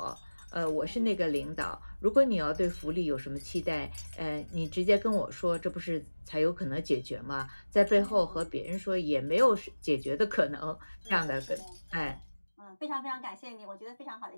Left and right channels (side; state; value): both; inverted; correlation -1.00